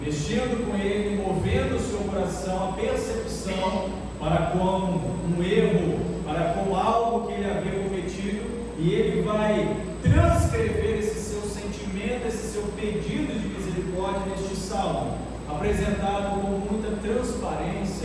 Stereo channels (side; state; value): both; identical; correlation 1.00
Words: com ele, movendo o seu coração, a percepção para com um erro, para com algo que ele havia cometido, e ele vai transcrever esse seu sentimento, esse seu pedido de misericórdia neste salmo, apresentado com muita transparência